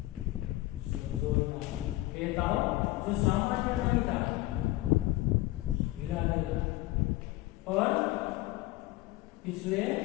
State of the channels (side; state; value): right; quieter; 18.0 dB